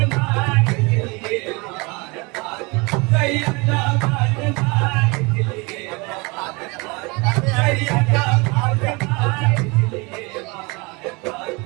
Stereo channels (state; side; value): quieter; left; 27.5 dB